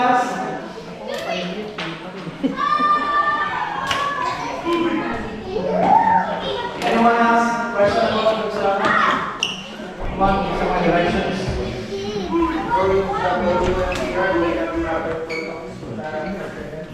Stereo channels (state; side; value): identical; both; correlation 1.00